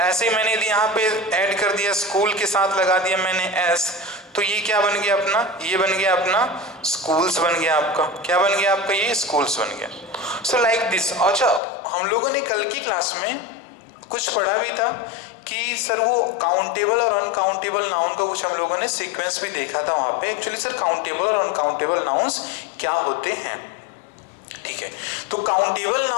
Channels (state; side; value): drops out; right; at 11.6 s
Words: ऐसे ही मैंने यहाँ पे ऐड कर दिया, स्कूल के साथ लगा दिया मैंने S, तो ये क्या बन गया अपना, ये बन गया अपना स्कूल्स बन गया आपका. क्या बन गया आपका, ये स्कूल्स बन गया. So like this. अच्छा, हम लोगों ने कल की क्लास में कुछ पढ़ा भी था कि सर वो काउंटेबल और अनकाउंटेबल नाउन का कुछ हम लोगों ने सीक्वेंस भी देखा था वहां पे. एक्चुअली सर काउंटेबल और अनकाउंटेबल नाउन्स क्या होते हैं. ठीक है. तो काउंटेबल